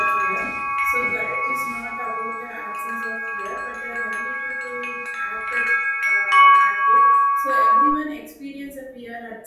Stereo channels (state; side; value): identical; both; correlation 1.00